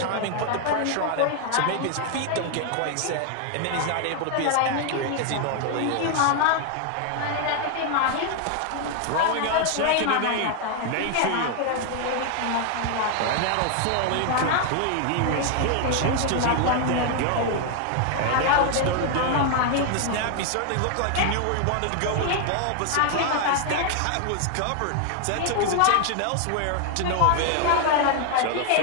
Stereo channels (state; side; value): different; both; correlation 0.00